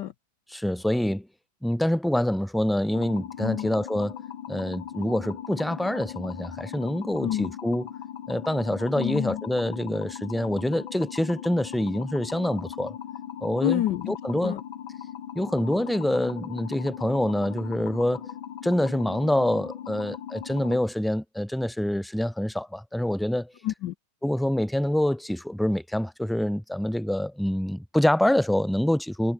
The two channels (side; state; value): both; normal; correlation 0.91